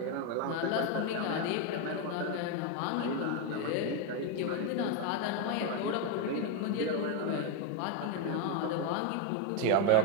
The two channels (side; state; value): both; different; correlation 0.02